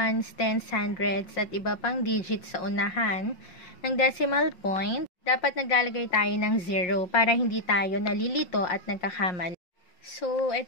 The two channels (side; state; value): right; late; 5.6 ms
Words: tens, hundreds at iba pang digits sa unahan ng decimal point, dapat naglalagay tayo ng 0 para hindi tayo nalilito at nagkakamali. So,